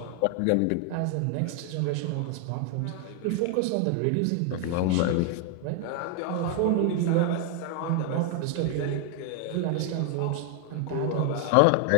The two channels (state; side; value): different; both; correlation 0.00